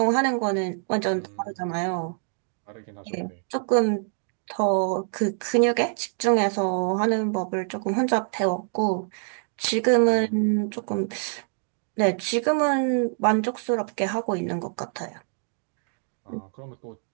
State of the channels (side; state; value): left; silent; digital silence